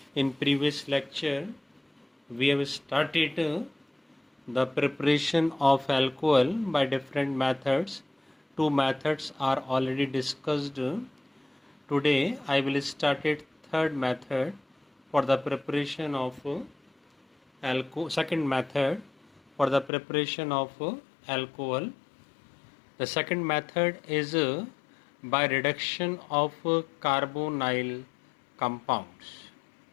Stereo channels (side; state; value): right; drops out; at 19.9 s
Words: In previous lecture, we have started the preparation of alcohol by different methods. Two methods are already discussed. Today, I will start it third method for the preparation of alcohol. Second method for the preparation of alcohol. The second method is by reduction of carbonyl compounds.